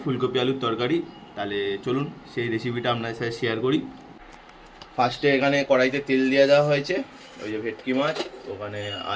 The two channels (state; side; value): identical; both; correlation 1.00